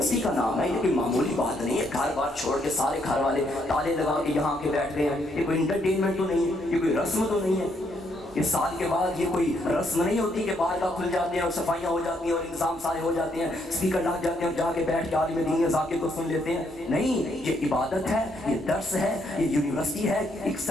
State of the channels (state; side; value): normal; both; correlation 0.73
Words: کا نام ہے، یہ کوئی معمولی بات نہیں ہے، گھر بار چھوڑ کے سارے گھر والے تالے لگا کے یہاں کے بیٹھ گئے ہیں، یہ کوئی انٹرٹینمنٹ تو نہیں ہے، یہ کوئی رسم تو نہیں ہے۔ اس سال کے بعد یہ کوئی رسم نہیں ہوتی کہ بار کا کھل جاتے ہیں اور صفائیاں ہو جاتی ہیں اور انتظام سارے ہو جاتے ہیں، اسپیکر لگ جاتے ہیں اور جا کے بیٹھ کے عالم دین ذاکر کو سن لیتے ہیں۔ نہیں، یہ عبادت ہے، یہ درس ہے، یہ یونیورسٹی ہے۔